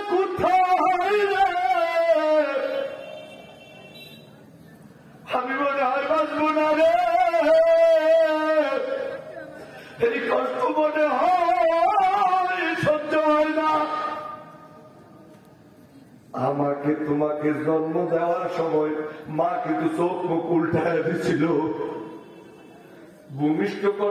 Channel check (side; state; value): both; identical; correlation 1.00